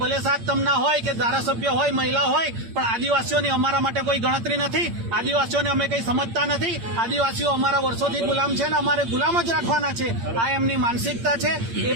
સાત તમના હોય કે ધારાસભ્ય હોય મહિલા હોય પણ આદિવાસીઓની અમારા માટે કોઈ ગણતરી નથી આદિવાસીઓને અમે કંઈ સમજતા નથી આદિવાસીઓ અમારા વર્ષોથી ગુલામ છે ને અમારે ગુલામ જ રાખવાના છે આ એમની માનસિકતા છે એ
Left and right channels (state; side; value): late; left; 8.7 ms